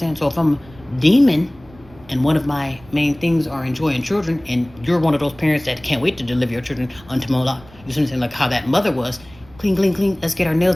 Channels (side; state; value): right; noise; rumble, 24 dB below the sound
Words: So if I'm a demon and one of my main things are enjoying children, and you're one of those parents that can't wait to deliver your children unto Moloch, you see what I'm saying? Like how that mother was, clean, clean, clean, let's get our